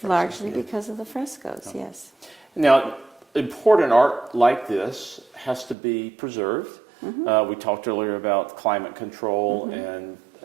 largely because of the frescoes, yes. Now, important art like this has to be preserved. We talked earlier about climate control and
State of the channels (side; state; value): left; drops out; at 5.8 s